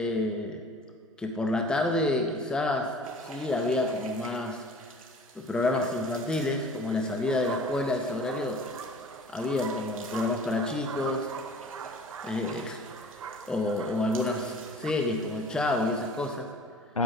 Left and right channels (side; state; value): both; normal; correlation 0.46